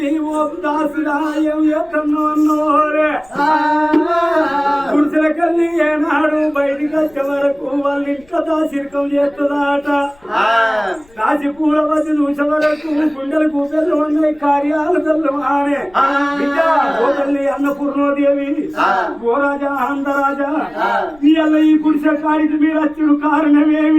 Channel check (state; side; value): noise; left; rumble, 29 dB below the sound